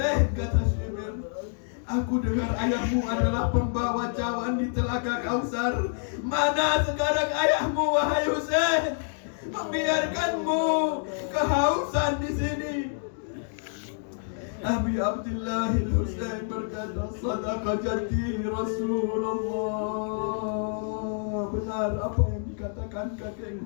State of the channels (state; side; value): silent; right; digital silence